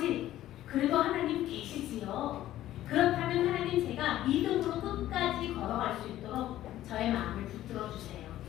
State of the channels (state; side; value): quieter; right; 13.7 dB